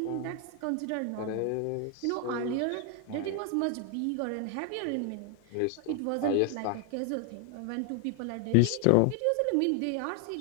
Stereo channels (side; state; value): both; different; correlation 0.01